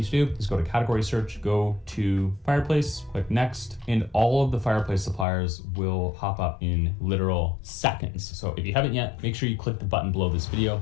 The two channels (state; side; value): drops out; right; at 5.2 s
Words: to do is go to category search, go to fireplace, click next, and all of the fireplace suppliers will pop up in literal seconds. So if you haven't yet, make sure you click the button below this